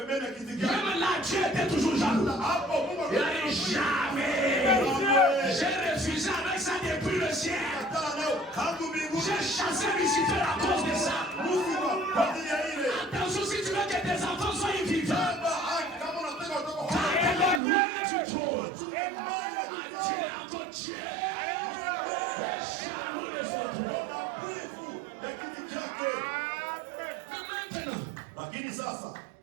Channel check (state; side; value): drops out; left; at 17.6 s